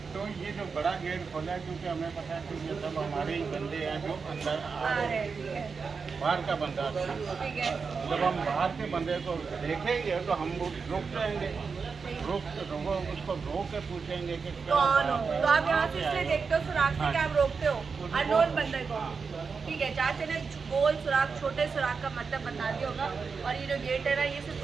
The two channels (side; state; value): left; quieter; 5.2 dB